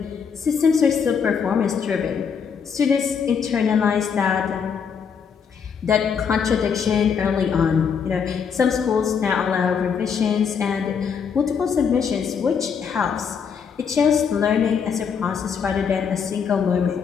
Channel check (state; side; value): quieter; right; 6.7 dB